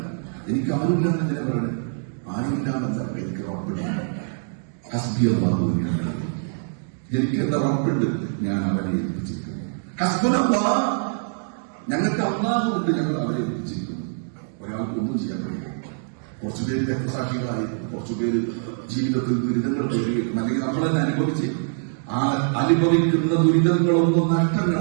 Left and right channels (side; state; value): left; silent; digital silence